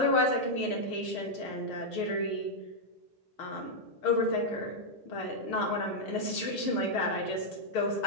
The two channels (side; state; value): right; late; 6.6 ms